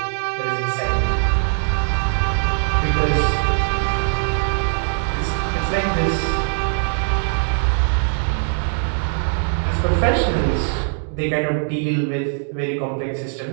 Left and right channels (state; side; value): silent; left; digital silence